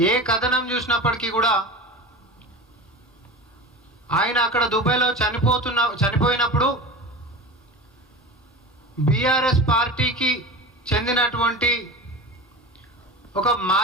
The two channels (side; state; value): both; normal; correlation 0.31